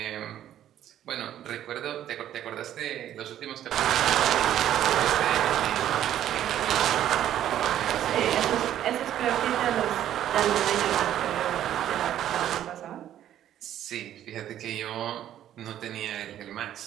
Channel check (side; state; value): left; quieter; 11.5 dB